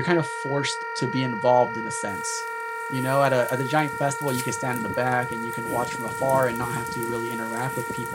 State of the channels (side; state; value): both; identical; correlation 1.00